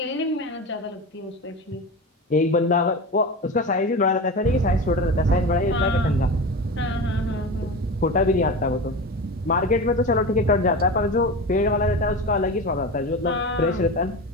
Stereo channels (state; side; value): normal; both; correlation 0.27